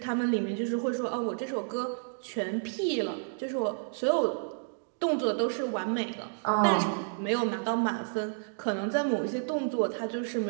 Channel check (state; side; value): silent; left; digital silence